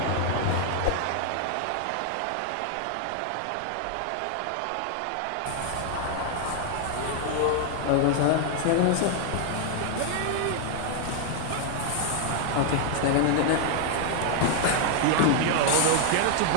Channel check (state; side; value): different; both; correlation 0.00